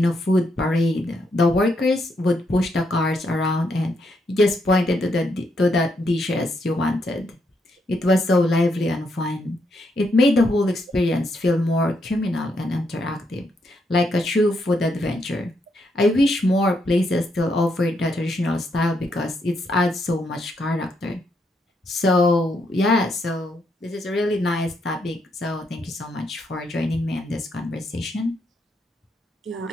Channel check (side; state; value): both; normal; correlation 0.78